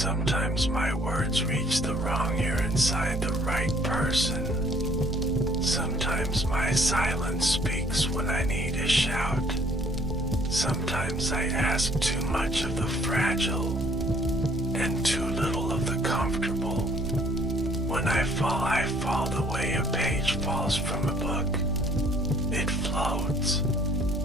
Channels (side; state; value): both; normal; correlation 0.60